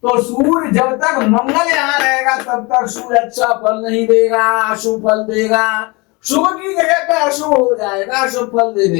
तो सूर्य जब तक मंगल यहां रहेगा तब तक सूर्य अच्छा फल नहीं देगा, अशुभ फल देगा। शुभ की जगह पे अशुभ हो जाएगा, अशुभ फल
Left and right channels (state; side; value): quieter; right; 26.4 dB